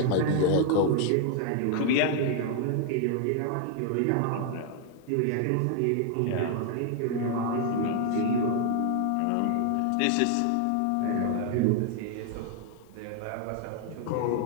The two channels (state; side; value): different; both; correlation 0.00